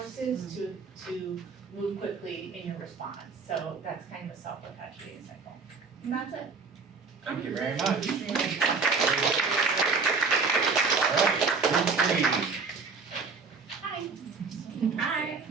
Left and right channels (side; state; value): left; quieter; 4.6 dB